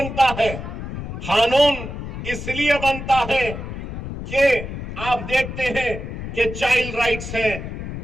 ہے؟ قانون اس لیے بنتا ہے کہ آپ دیکھتے ہیں کہ چائلڈ رائٹس ہیں،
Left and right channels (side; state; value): left; noise; rumble, 7 dB below the sound